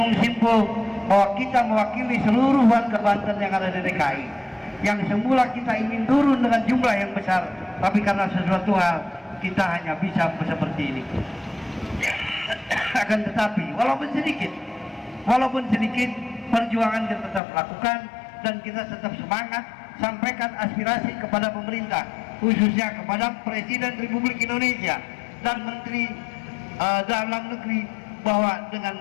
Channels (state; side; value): drops out; right; at 17.4 s